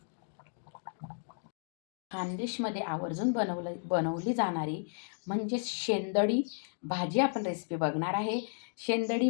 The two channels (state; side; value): silent; right; digital silence